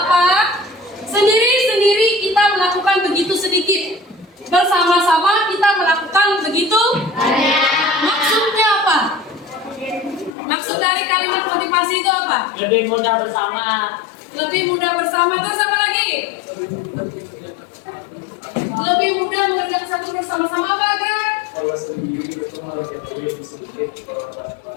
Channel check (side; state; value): right; drops out; at 10.3 s